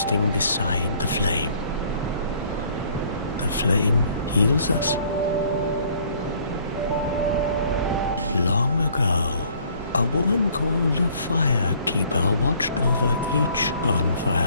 beside the flame. The flame heals us. Long ago, a woman called a firekeeper watched over each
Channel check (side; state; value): both; inverted; correlation -0.58